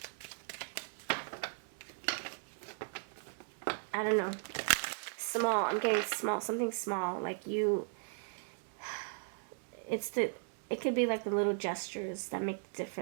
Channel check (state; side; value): silent; left; 53 dB below the other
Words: I don't know. Small. I'm getting small. Something small. Like you. It could be like the little gestures that make the